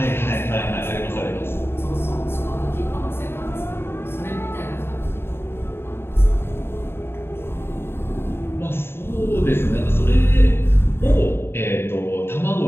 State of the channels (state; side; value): late; right; 0.11 ms